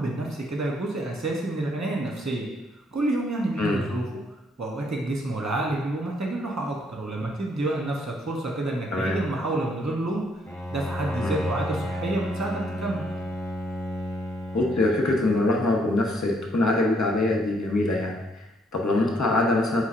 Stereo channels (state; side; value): normal; both; correlation 0.69